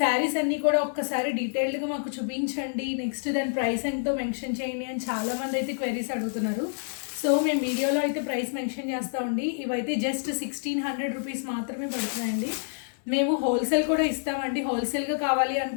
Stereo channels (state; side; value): silent; right; digital silence